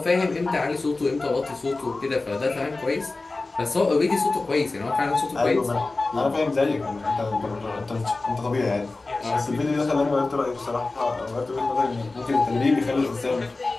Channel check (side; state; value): right; quieter; 3.4 dB